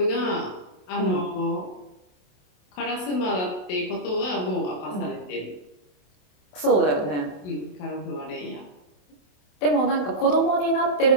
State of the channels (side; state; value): right; late; 27 ms